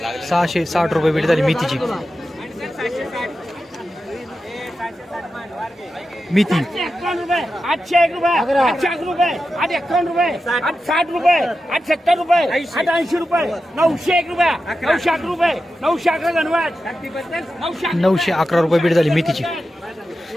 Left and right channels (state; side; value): normal; both; correlation 0.91